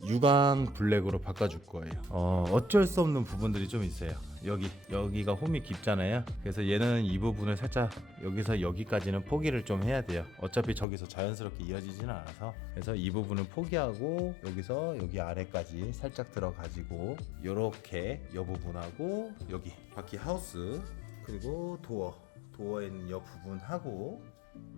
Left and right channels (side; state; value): right; drops out; at 10.9 s